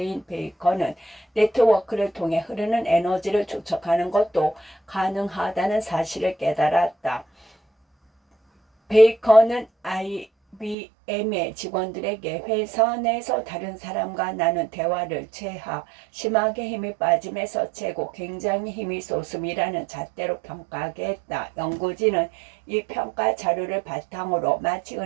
베이커는 네트워크를 통해 흐르는 에너지를 추적하는 것도 가능하다는 사실을 깨달았다. 베이커는 IBM의 직원들에게 회사 내에서 다른 사람과 나눈 대화를 심하게 힘이 빠짐에서 최고 굉장히 힘이 솟음이라는 잣대로 평가하게 했다. 연구진은 이 평가 자료를 바탕으로 마치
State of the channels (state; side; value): drops out; left; at 10.8 s